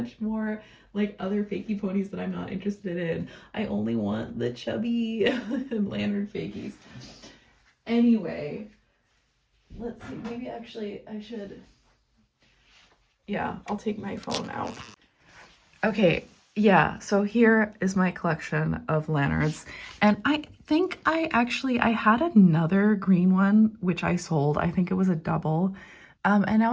more like other fakey ponies that I'm not interested in. I only want the chubby Lanyard fakies. Anyway, let's see, maybe actually I should, yeah, I'll take my phone out. Okay, yeah, so here is my collection of Lanyards, and I think I had another green one which I sold. I think it was a double. And now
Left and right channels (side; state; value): both; identical; correlation 1.00